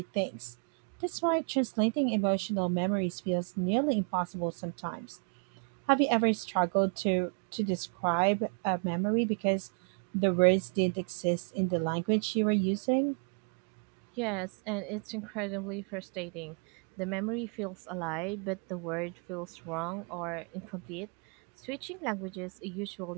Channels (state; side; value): quieter; left; 39.8 dB